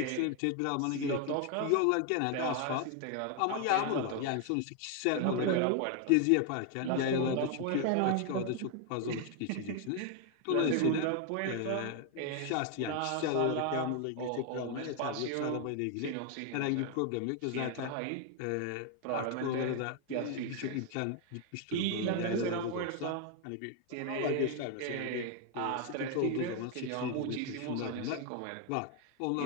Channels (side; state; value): both; different; correlation 0.01